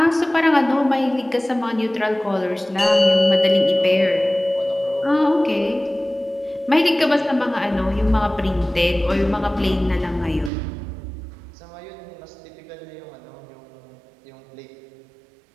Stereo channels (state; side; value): drops out; left; at 10.5 s